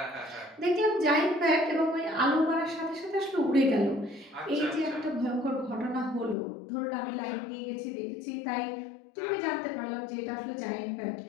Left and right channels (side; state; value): right; drops out; at 6.4 s